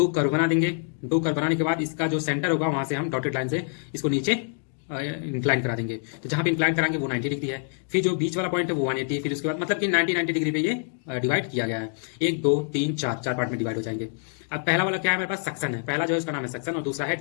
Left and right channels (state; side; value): silent; right; 58 dB below the other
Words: कर्व बना देंगे। दो कर्व बनाने के बाद इसका जो सेंटर होगा वहां से हम डॉटेड लाइन से इसको नीचे इंक्लाइन करा देंगे। तो जहां पे इंक्लाइन कराएंगे वो 90 डिग्री है, फिर जो बीच वाला पॉइंट है वो 180, फिर उसके बाद मतलब कि 90 डिग्री पे ये डिवाइड किया गया है। 1 2 3 4 चार पार्ट में डिवाइड हो जाएंगे। अब पहला वाला क्या है, हमारे पास सक्शन है, पहला जो है उसका नाम है सक्शन और दूसरा है